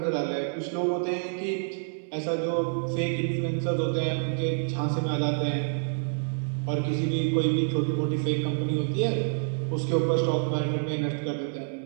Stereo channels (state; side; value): silent; left; 60 dB below the other